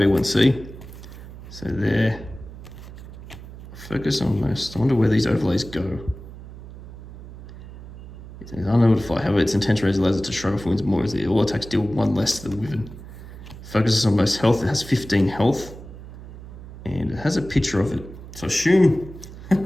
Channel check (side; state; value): right; noise; hum, 15 dB below the sound